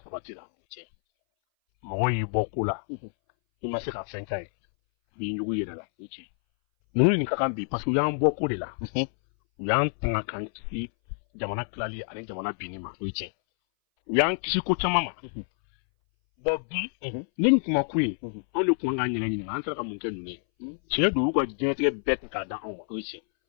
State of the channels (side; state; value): right; silent; 60 dB below the other